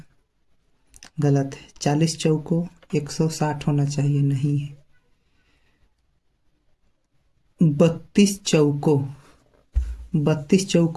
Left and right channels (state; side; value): identical; both; correlation 1.00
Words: गलत है। 40 चौको 160 होना चाहिए, नहीं है। 32 चौको